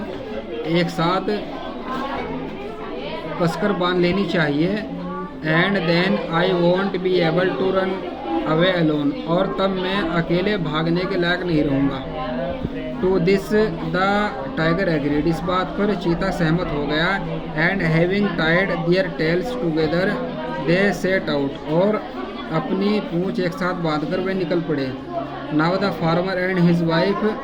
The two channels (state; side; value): identical; both; correlation 1.00